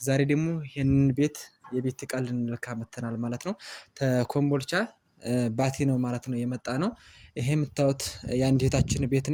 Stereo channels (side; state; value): both; identical; correlation 1.00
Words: ዛሬ ደግሞ ይህንን የቤት ዕቃ ልንለካ መተናል ማለት ነው። ተኮምቦልቻ ባቲ ነው ማለት ነው የመጣ ነው። ይሄ የምታዩት የአንድ እህታችን ቤት